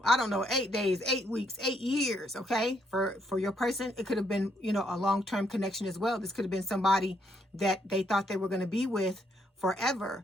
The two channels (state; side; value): normal; both; correlation 0.73